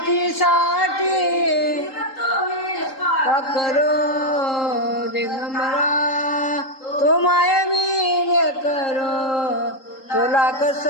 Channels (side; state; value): right; late; 3.8 ms